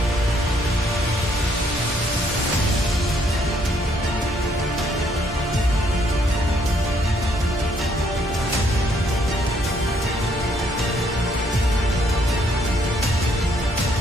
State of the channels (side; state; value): both; normal; correlation 0.69